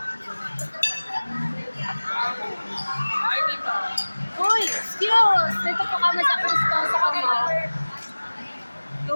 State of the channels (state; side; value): inverted; both; correlation -1.00